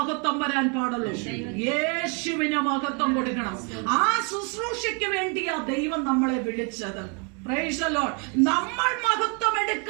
വരാൻ പാടുള്ളൂ? യേശുവിന് മഹത്വം കൊടുക്കണം. ആ ശുശ്രൂഷയ്ക്ക് വേണ്ടിയാ ദൈവം നമ്മളെ വിളിച്ചത്. Praise the Lord. നമ്മൾ മഹത്വം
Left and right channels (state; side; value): quieter; left; 35.8 dB